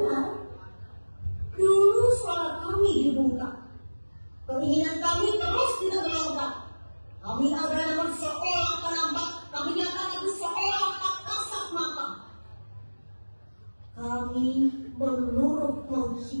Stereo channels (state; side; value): inverted; both; correlation -1.00